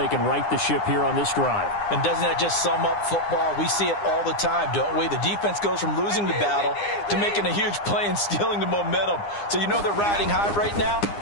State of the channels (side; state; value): right; late; 9.8 ms